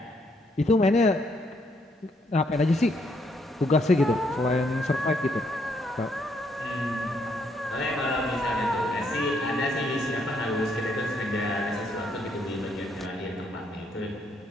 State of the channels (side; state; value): both; normal; correlation 0.73